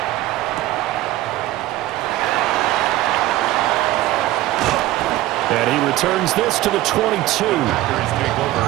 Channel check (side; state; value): left; quieter; 16.0 dB